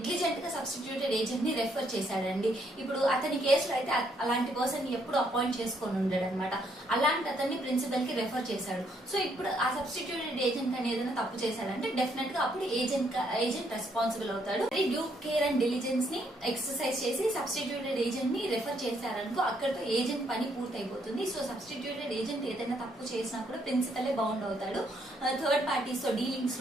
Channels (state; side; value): normal; both; correlation 0.72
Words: గా సబ్స్టిట్యూటెడ్ ఏజెంట్ ని రెఫర్ చేశాడండి, ఇప్పుడు అతని కేసులో అయితే అలాంటి పర్సన్ ఎప్పుడు అపాయింట్ చేసుకొని ఉండడు అనమాట. అలాంటి అతన్ని ప్రిన్సిపల్ కి రెఫర్ చేశాడు. సో ఇప్పుడు ఆ సబ్స్టిట్యూటెడ్ ఏజెంట్ అని ఏదైనా తప్పు చేశాడంటే డెఫినెట్ గా అప్పుడు ఏజెంట్ రెస్పాన్సిబుల్ అవుతాడు. డ్యూ కేర్ అండ్ డిలిజెన్స్ ని ఎక్సర్సైజ్ చేసి సబ్స్టిట్యూటెడ్ ఏజెంట్ ని రెఫర్ చేశారనుకో అక్కడతో ఏజెంట్ పని పూర్తి అయిపోతుంది. సో సబ్స్టిట్యూటెడ్ ఏజెంట్ ఏదైనా తప్పు చేసినా కూడా ప్రిన్సిపలే బౌండ్ అవుతాడు. థర్డ్ పార్టీస్ తో డీలింగ్స్